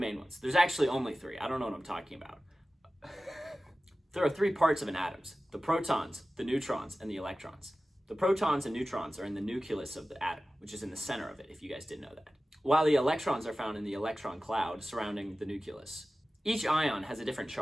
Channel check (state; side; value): normal; both; correlation 0.96